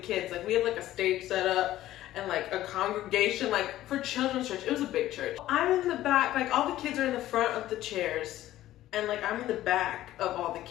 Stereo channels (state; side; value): quieter; right; 14.3 dB